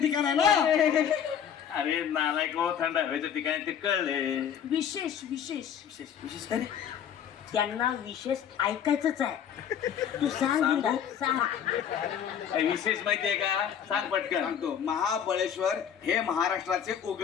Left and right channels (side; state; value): right; quieter; 8.6 dB